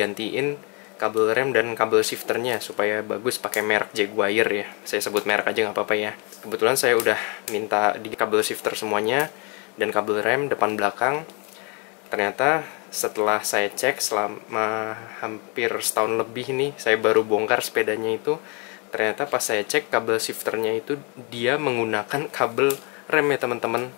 kabel rem dan kabel shifternya supaya bagus pakai merek Jaguar ya. Saya sebut merek aja nggak apa-apa ya. Kebetulan saya udah minta di kabel shifter semuanya dan kabel rem depan belakang. Ternyata setelah saya cek selama hampir setahun lebih nih, saya baru bongkar sepedanya itu. Ternyata pas saya cek kabel shifternya itu dia menggunakan kabel rem ya teman-teman.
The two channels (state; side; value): quieter; right; 32.8 dB